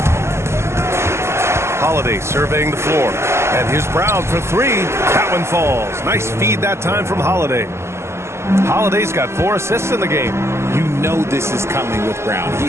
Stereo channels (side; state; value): left; late; 0.13 ms